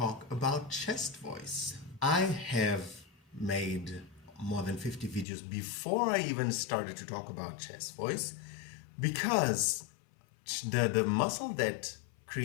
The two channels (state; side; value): drops out; right; at 5.2 s